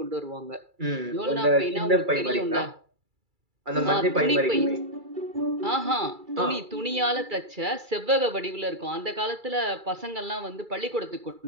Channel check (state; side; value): late; left; 2.3 ms